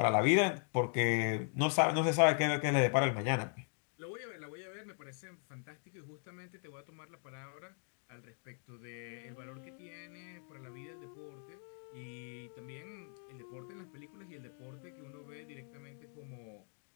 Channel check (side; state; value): right; silent; 52 dB below the other